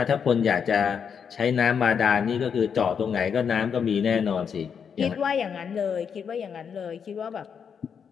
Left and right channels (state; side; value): quieter; right; 7.0 dB